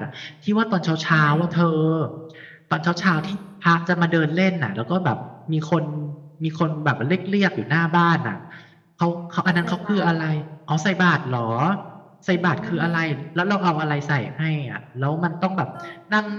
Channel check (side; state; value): both; identical; correlation 1.00